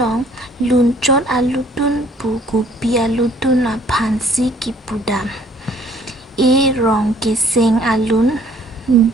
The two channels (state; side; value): normal; both; correlation 0.58